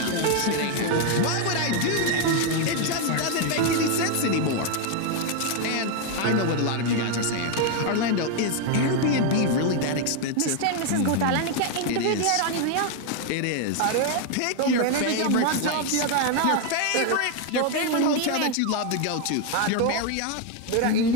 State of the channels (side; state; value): both; different; correlation 0.01